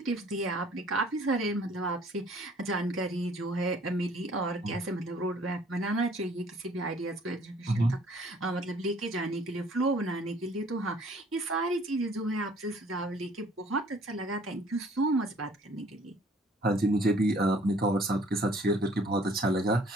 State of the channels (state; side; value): normal; both; correlation 0.56